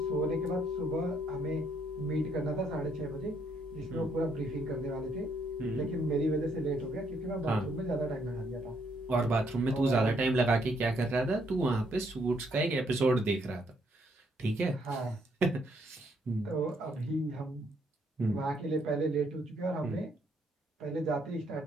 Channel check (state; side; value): normal; both; correlation 0.71